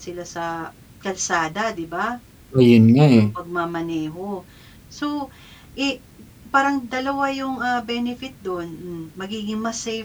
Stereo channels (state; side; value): identical; both; correlation 1.00